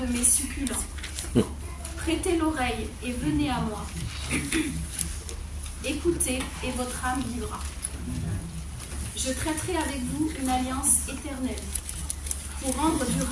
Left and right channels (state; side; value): identical; both; correlation 1.00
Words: mes succulents. Prêtez l'oreille et venez à moi. Écoutez et votre âme vivra. Je traiterai avec vous une alliance éternelle pour rendre